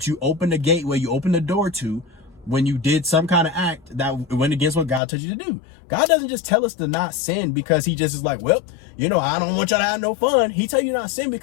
you open the gateway, you open the door to, when you did some kind of act that went against what God told you to do. God doesn't just tell us to not sin because he just is like, well, you know, I don't want y'all to have no fun. He tell you not to sin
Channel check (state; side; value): drops out; right; at 5.0 s